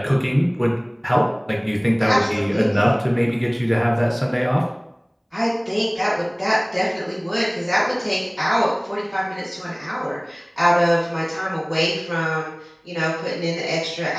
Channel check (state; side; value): identical; both; correlation 1.00